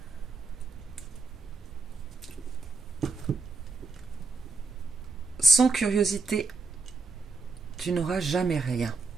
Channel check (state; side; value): quieter; left; 3.9 dB